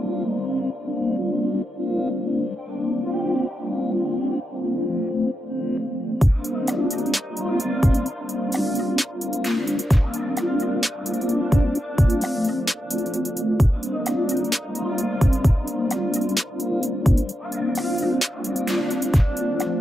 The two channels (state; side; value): normal; both; correlation 0.88